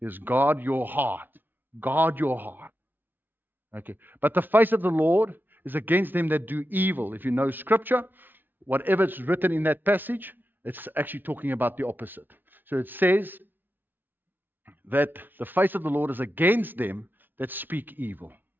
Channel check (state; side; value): late; left; 0.091 ms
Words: is guard your heart. Guard your heart. Okay. But the face of the Lord is against them that do evil. If you know scripture, whatever is written in that passage, it's actually talking about the opposite. So it says that the face of the Lord is against them that speak evil.